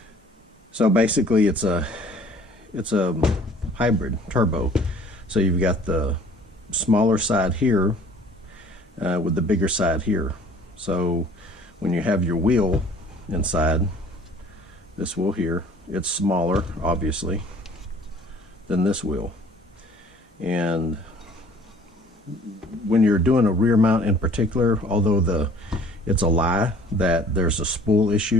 So basically it's a hybrid turbo. So you've got the smaller side here with the bigger side here. So when you have your wheel inside, this wheel here, it's smaller obviously than this wheel. And when you're doing a rear mount in particular, although it's a lie that there's a spool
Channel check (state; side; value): normal; both; correlation 0.53